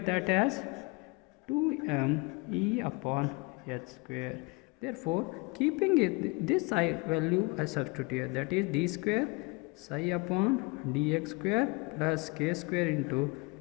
that as 2m E upon h square. Therefore, keeping it this psi value I substitute here, that is d square psi upon dx square plus k square into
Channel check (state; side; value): quieter; right; 27.6 dB